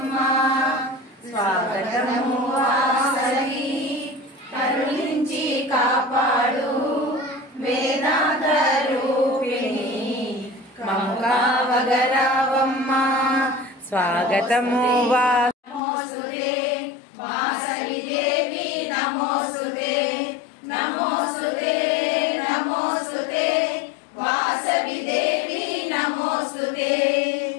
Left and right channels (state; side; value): drops out; right; at 15.8 s